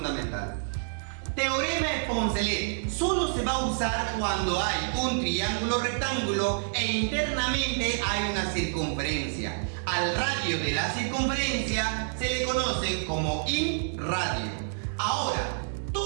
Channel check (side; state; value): left; silent; 59 dB below the other